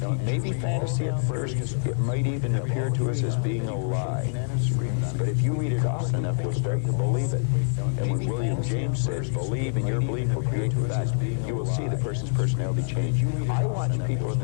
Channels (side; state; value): right; silent; 61 dB below the other